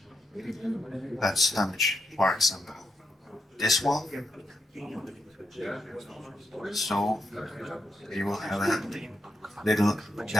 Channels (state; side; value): normal; both; correlation 0.83